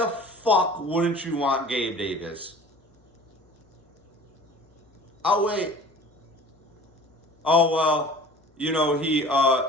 fuck wouldn't you want Gabe Davis? Oh, wait. Oh, well, he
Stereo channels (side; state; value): both; normal; correlation 0.44